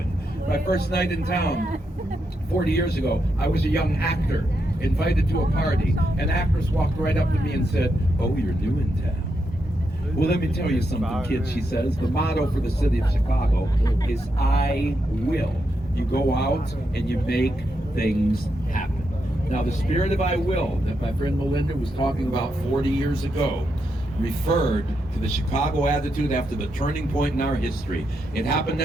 My first night in town 40 years ago, I was a young actor invited to a party. An actress walked right up to me and said, "Oh, you're new in town." Well, let me tell you something, kids, she says. The motto for the city of Chicago is I will. You go out and you make things happen. Now, the spirit of I will that my friend Melinda was talking about 40 years ago referred to the Chicago attitude after the turning point in our history. It happened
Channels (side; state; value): both; normal; correlation 0.83